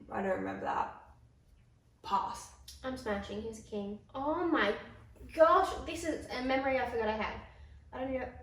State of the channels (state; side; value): identical; both; correlation 1.00